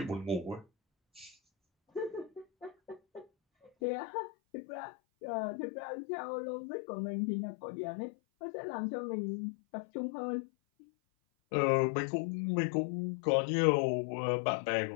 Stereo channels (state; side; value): drops out; right; at 3.7 s